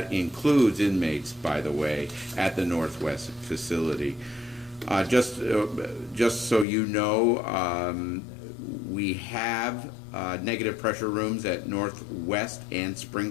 includes inmates, by the way, at the Northwest facility. Just so you know, we have negative pressure rooms at Northwest and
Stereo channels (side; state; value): right; drops out; at 6.7 s